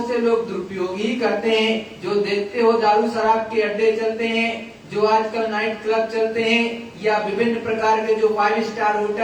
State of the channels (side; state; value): both; identical; correlation 1.00